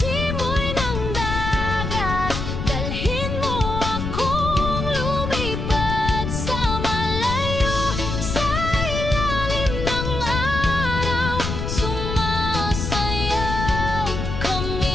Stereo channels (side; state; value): left; noise; rumble, 4 dB below the sound